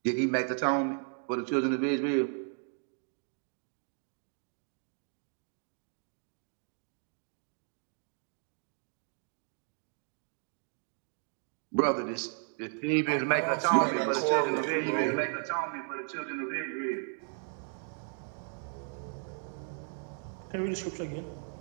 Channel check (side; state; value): left; silent; 55 dB below the other